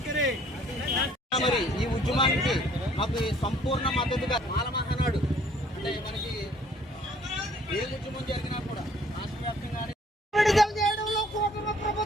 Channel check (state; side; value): normal; both; correlation 0.59